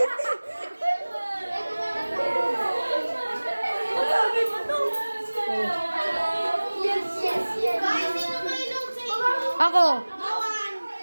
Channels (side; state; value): both; inverted; correlation -1.00